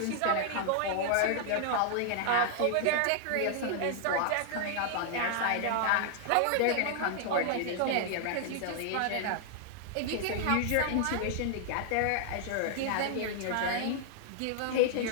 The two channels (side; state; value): both; different; correlation 0.00